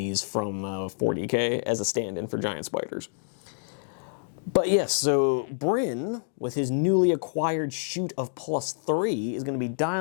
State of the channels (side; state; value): right; silent; digital silence